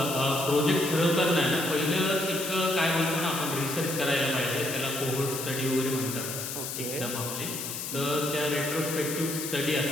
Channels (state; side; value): noise; left; hiss, 5 dB below the sound